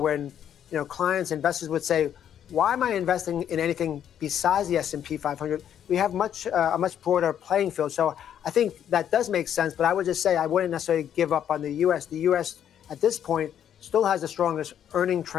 clients, investors would say, why am I investing in anything besides the S&P 500? We have a much broader playing field. So I think that does make sense, but I would just say I wouldn't necessarily give up on the U.S. The U.S. at this point still has the strongest earning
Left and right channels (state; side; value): quieter; right; 9.6 dB